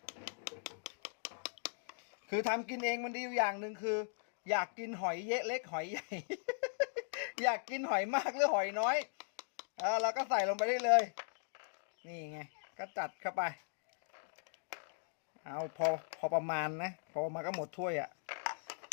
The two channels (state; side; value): silent; right; digital silence